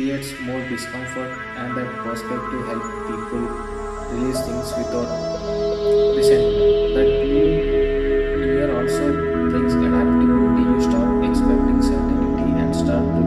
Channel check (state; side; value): identical; both; correlation 1.00